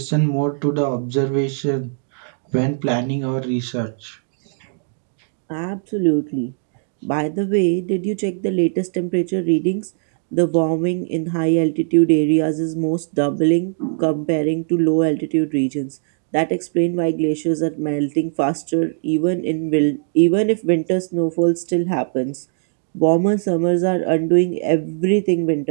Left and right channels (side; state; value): left; silent; digital silence